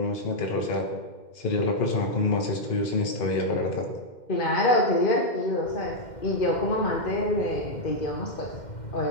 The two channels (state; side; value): late; right; 2.1 ms